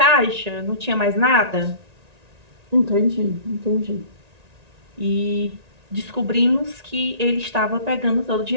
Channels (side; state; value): left; late; 1.9 ms